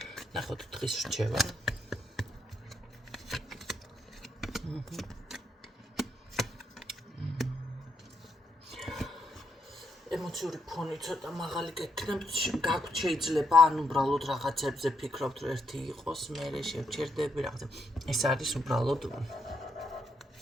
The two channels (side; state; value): both; normal; correlation 0.78